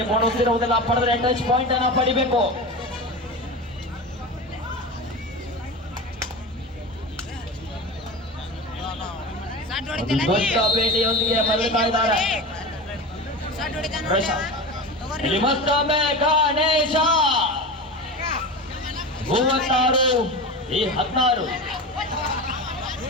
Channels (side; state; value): both; normal; correlation 0.27